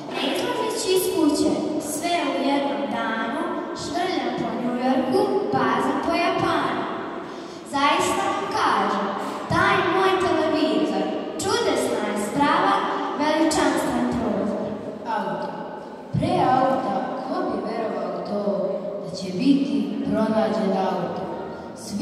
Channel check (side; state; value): both; identical; correlation 1.00